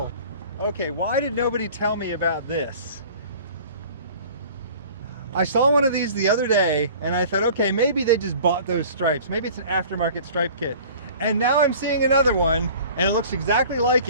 Okay, why did nobody tell me about this? I saw one of these the other day, and I thought, okay, maybe they just bought those stripes. Maybe it's an aftermarket stripe kit. And now I'm seeing another one, and it looks exactly like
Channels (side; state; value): both; inverted; correlation -0.45